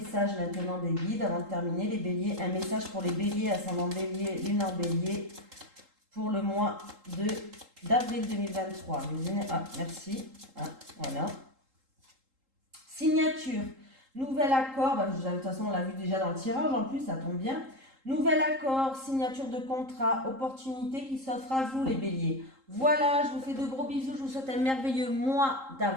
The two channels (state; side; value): late; left; 3.8 ms